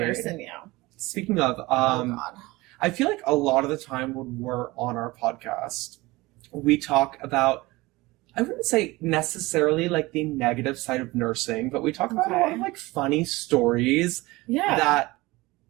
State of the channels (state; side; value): quieter; left; 21.1 dB